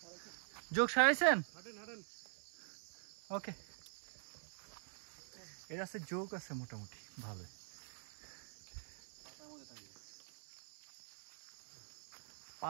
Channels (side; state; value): left; silent; digital silence